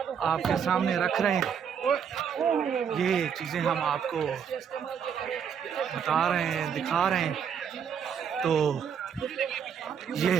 आपके सामने रख रहे हैं। ये चीज़ें हम आपको बता रहे हैं, दिखा रहे हैं। तो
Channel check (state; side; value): quieter; left; 7.6 dB